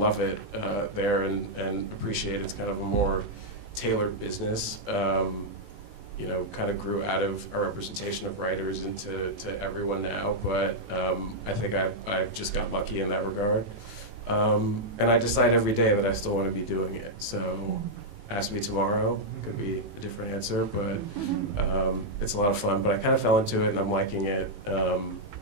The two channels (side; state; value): left; late; 18 ms